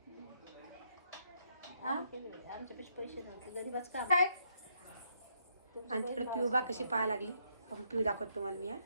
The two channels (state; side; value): inverted; both; correlation -0.74